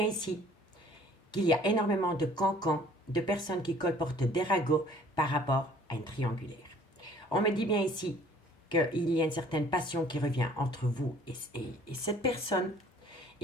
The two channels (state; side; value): normal; both; correlation 0.55